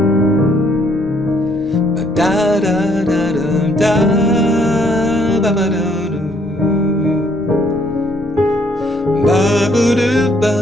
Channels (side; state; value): both; normal; correlation 0.67